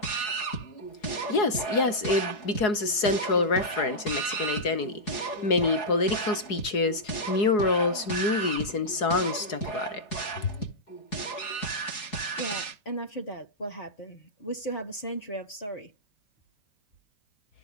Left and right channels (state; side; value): late; right; 4.7 ms